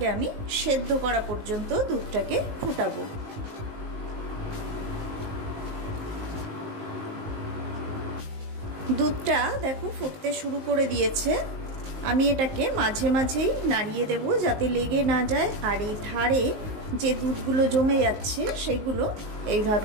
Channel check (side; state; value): left; late; 19 ms